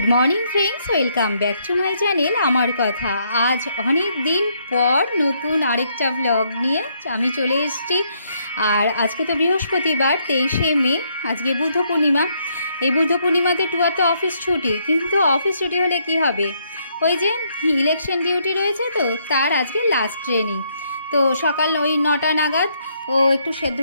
morning friends, welcome back to my channel আমার কথা। আজ অনেক দিন পর নতুন আরেকটা ব্লগ নিয়ে আমি চলে এসেছি। আর আজকে তো বৃহস্পতিবার, 23শে মে, আজকে বুদ্ধ পূর্ণিমা। এই বুদ্ধ পূর্ণিমাতে টুয়ার তো অফিস ছুটি, কিন্তু অফিস ছুটি হলে কি হবে, ওই যে ইলেকশন ডিউটি রয়েছে, তো তার আজকে লাস্ট ট্রেনিং। তো সকাল ওই 9টা নাগাদ ও একটু সেদ্ধ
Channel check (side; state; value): both; inverted; correlation -0.72